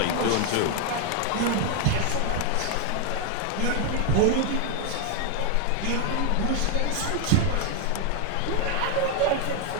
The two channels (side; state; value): both; different; correlation 0.01